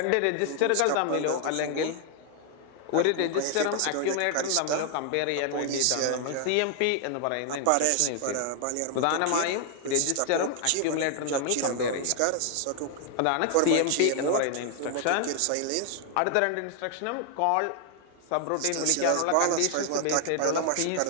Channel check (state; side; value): different; both; correlation 0.00